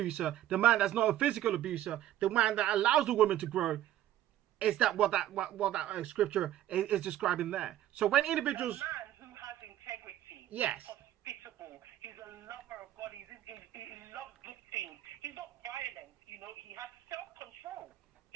The man that's not a physical abuser. The man that allows the woman to grow. Is that what that scripture is describing there? So when individuals, a man who has integrity, yes, hospitable, he's a lover of God, he loves good things. He's not violent, he has self-control.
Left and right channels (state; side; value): quieter; left; 12.8 dB